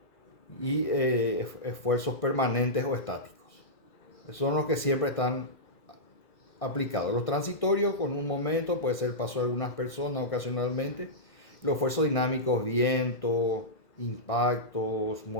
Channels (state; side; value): late; right; 1.6 ms